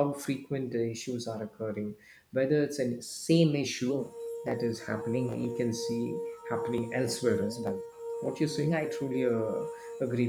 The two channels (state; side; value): identical; both; correlation 1.00